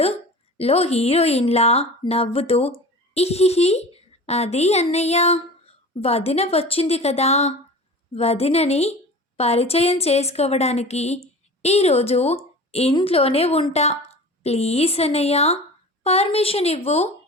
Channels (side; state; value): both; normal; correlation 0.37